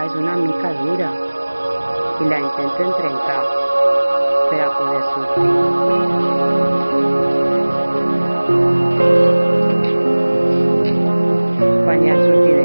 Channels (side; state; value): both; inverted; correlation -1.00